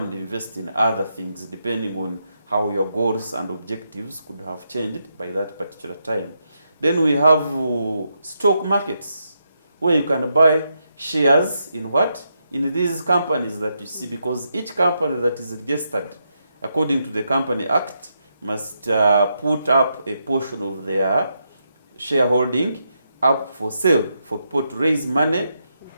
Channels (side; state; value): both; inverted; correlation -0.82